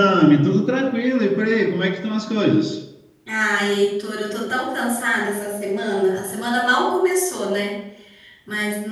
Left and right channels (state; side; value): identical; both; correlation 1.00